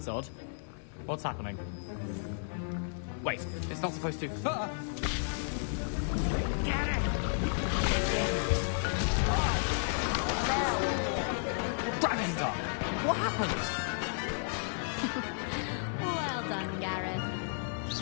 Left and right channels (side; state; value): right; silent; 56 dB below the other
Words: odd. What's happening? Wait, it's not supposed to... Ah! Get it! Dragonstar! What happened? Well done, Gareth.